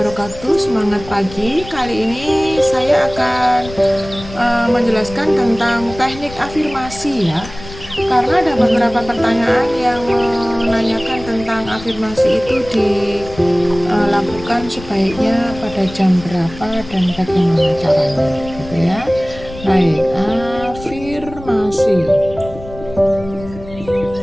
Semangat pagi. Kali ini saya akan menjelaskan tentang teknik afirmasi ya. Karena ada beberapa pertanyaan yang menanyakan tentang afirmasi itu dilakukan sebaiknya pada jam berapa dan bagaimana caranya, gitu ya. Baik, afirmasi.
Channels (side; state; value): left; noise; rumble, 15 dB below the sound